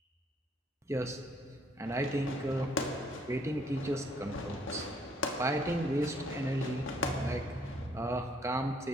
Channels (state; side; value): normal; both; correlation 0.64